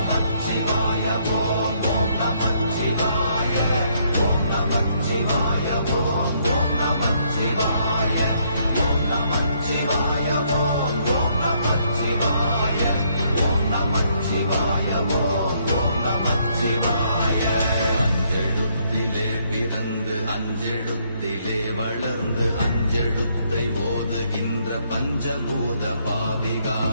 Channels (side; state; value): both; inverted; correlation -0.70